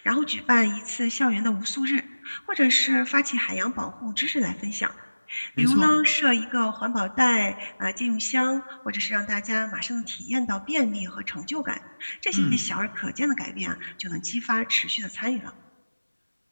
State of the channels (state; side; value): inverted; both; correlation -1.00